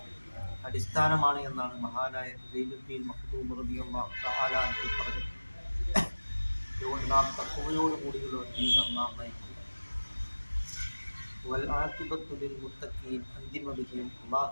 അടിസ്ഥാനമാണ് എന്നാണ് മഹാനായ സൈനുദ്ദീൻ മഖ്ദൂം റളിയല്ലാഹു തആല അൻഹു പറഞ്ഞത്. അതുകൊണ്ട് നാം തഖ്വയോടുകൂടിയുള്ള ജീവിതം നാം നയിക്കുക. വൽ ആഖിബത്തു ലിൽ മുത്തഖീൻ, അന്തിമ വിജയം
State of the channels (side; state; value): both; inverted; correlation -1.00